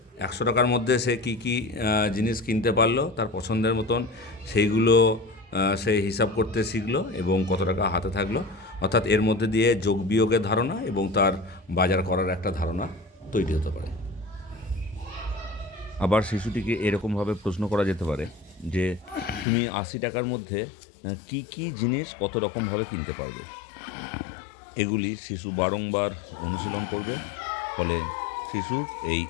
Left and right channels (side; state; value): right; drops out; at 19.5 s